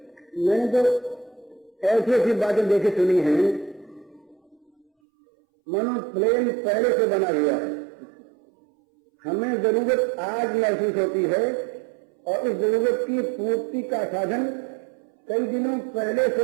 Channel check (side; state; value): left; drops out; at 4.9 s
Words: मैंने तो ऐसी ऐसी बातें देखी सुनी हैं, मनो प्लेन पहले से बना हुआ है, हमें जरूरत आज महसूस होती है और उस जरूरत की पूर्ति का साधन कई दिनों पहले से